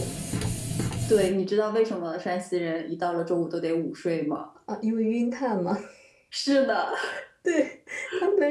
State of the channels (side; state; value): both; identical; correlation 1.00